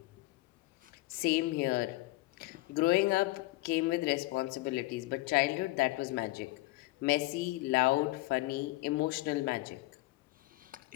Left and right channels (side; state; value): right; quieter; 19.7 dB